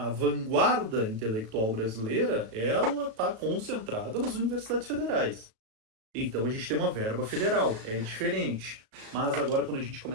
vanguarda intelectual brasileira, ela está concentrada nas universidades federais. Então a gente tem uma verba federal, é diferente. Mas agora, quando a gente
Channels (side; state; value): left; late; 36 ms